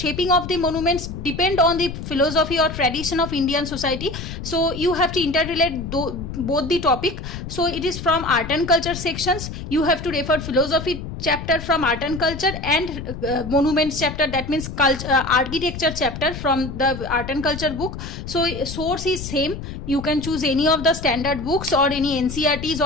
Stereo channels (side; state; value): left; noise; rumble, 9 dB below the sound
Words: of the monuments depend on the philosophy or tradition of Indian society. So you have to interrelate both the topic. So it is from art and culture sections. You have to refer philosophy chapter from art and culture and monuments chapter, that means culture, architecture chapter from the art and culture book. So source is same. You can choose any of the standard books or any NCERTs